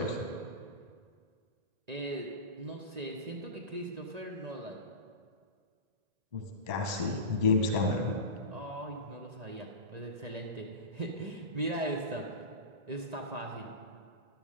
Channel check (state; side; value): late; left; 1.9 ms